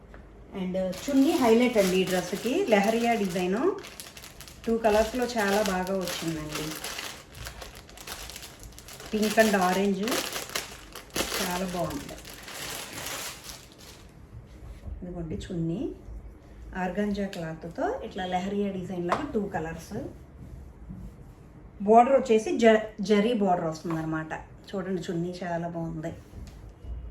అండ్ చున్నీ హైలైట్ అండి ఈ డ్రెస్కి, లెహరియా డిజైను 2 కలర్స్లో చాలా బాగా వచ్చిందండి, పింక్ అండ్ ఆరెంజ్, చాలా బాగుంది. ఇదిగోండి చున్నీ ఆర్గంజా క్లాత్తో ఇట్లా లెహరియా డిజైన్ లాగా 2 కలర్స్. బార్డర్ వచ్చేసి జరీ బార్డర్ వస్తుంది అనమాట. చూడండి చున్నీ చాలా బాగుంది.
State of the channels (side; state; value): both; identical; correlation 1.00